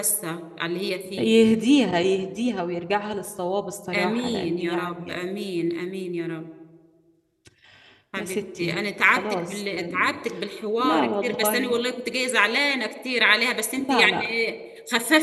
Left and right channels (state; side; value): identical; both; correlation 1.00